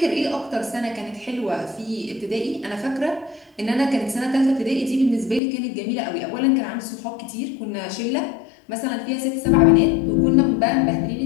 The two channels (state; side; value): drops out; right; at 5.4 s